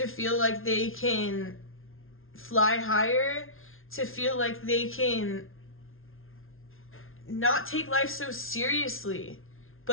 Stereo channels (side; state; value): right; late; 0.61 ms